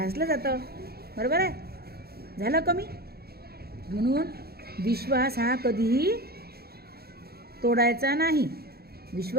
जातं. बरोबर आहे? झालं कमी. म्हणून विश्वास हा कधीही तोडायचा नाही.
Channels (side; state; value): left; late; 0.46 ms